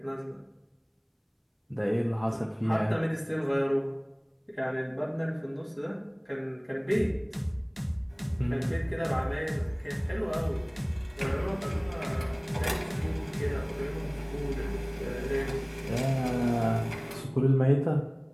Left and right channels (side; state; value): both; identical; correlation 1.00